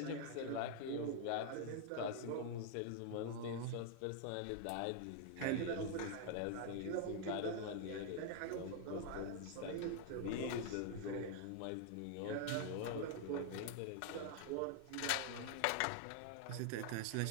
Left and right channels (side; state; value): both; different; correlation 0.00